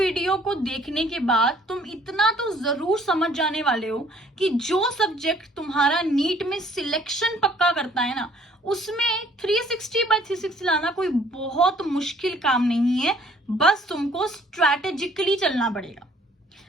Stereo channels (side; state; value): both; normal; correlation 0.59